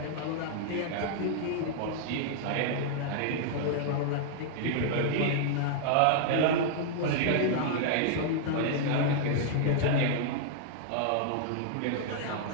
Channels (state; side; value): different; both; correlation -0.01